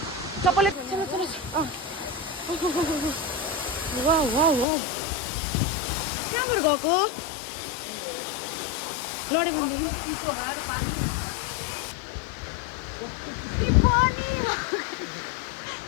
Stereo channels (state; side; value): drops out; right; at 4.7 s